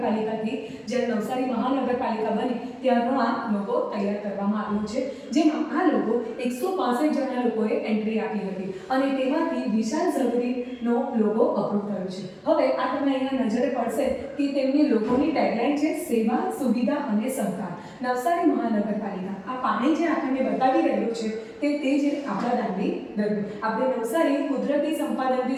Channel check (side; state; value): both; identical; correlation 1.00